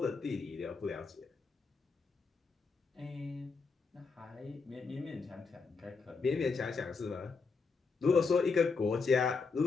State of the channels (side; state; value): right; quieter; 4.7 dB